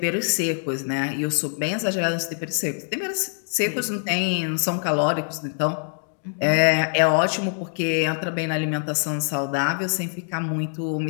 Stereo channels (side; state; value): right; silent; 62 dB below the other